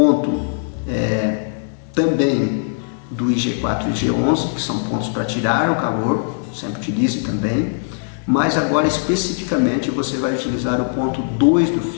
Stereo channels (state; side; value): silent; right; digital silence